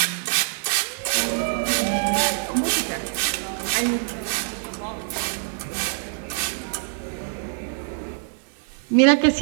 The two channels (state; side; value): silent; left; 62 dB below the other